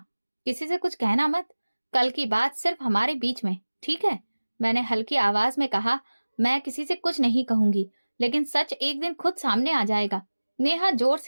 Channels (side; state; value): both; inverted; correlation -1.00